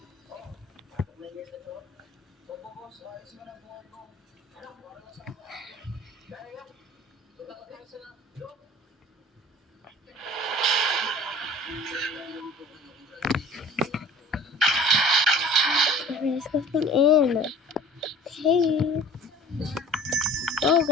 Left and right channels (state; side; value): normal; both; correlation 0.46